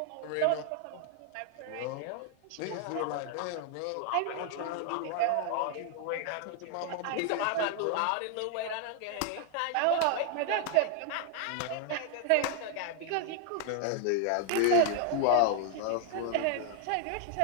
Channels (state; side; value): different; both; correlation 0.00